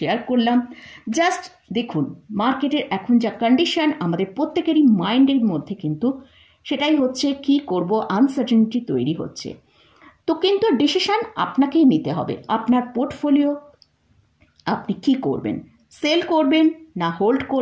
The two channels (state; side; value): identical; both; correlation 1.00